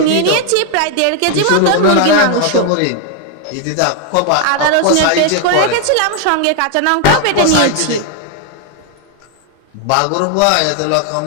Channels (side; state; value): both; different; correlation 0.01